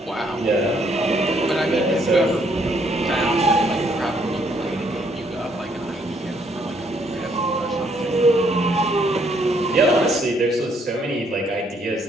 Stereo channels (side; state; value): both; normal; correlation 0.69